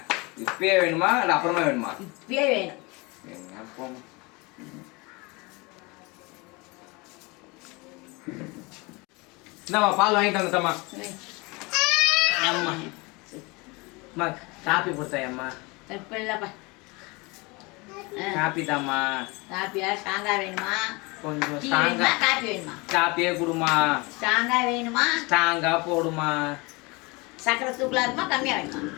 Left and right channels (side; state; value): right; quieter; 26.3 dB